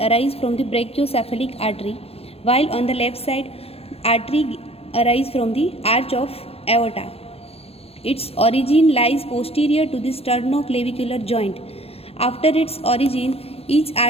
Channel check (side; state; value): right; late; 0.29 ms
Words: from the brachiocephalic artery, while on the left side, artery arises from the arch of aorta. Its origin lies posterior to the sternoclavicular joint. After its origin, each